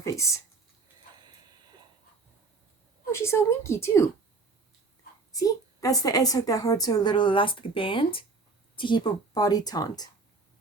Oh, she's so winky too. See? That's the edge hook that holds her little elastic band to keep her body taut.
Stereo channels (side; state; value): left; quieter; 4.0 dB